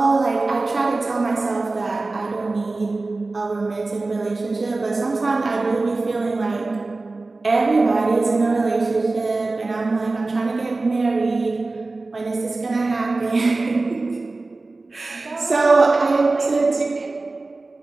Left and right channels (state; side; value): quieter; left; 3.4 dB